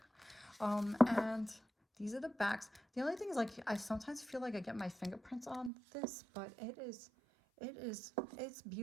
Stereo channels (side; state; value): left; drops out; at 5.7 s